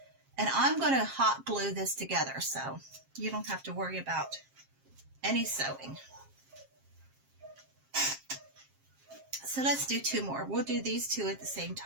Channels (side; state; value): left; late; 7.5 ms